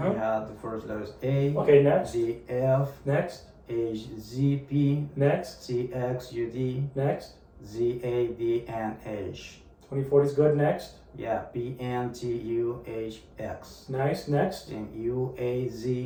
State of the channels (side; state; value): both; identical; correlation 1.00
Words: have the first letters A. Okay, next. D, F. Next. H, Z, P. Next. C, X, U, D. Next. Z, A, D, N, H. 2040 is good. Next. Yeah, P, N, T, U, H, X. Nice. Next. And U, A,